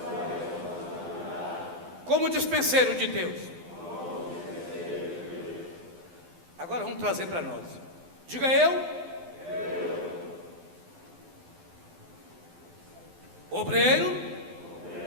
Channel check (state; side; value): late; left; 12 ms